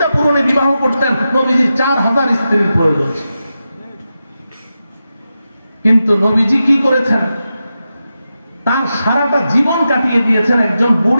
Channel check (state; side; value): inverted; both; correlation -0.90